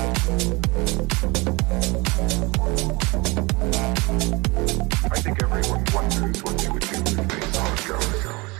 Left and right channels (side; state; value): left; quieter; 25.2 dB